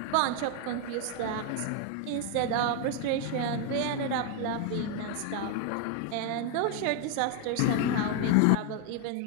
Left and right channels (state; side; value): different; both; correlation 0.01